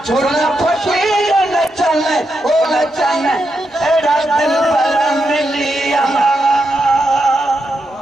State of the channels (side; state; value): both; normal; correlation 0.84